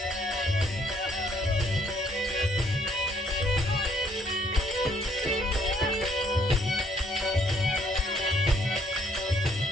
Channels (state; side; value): normal; both; correlation 0.67